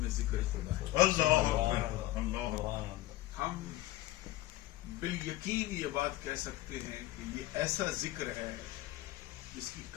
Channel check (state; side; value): quieter; right; 16.4 dB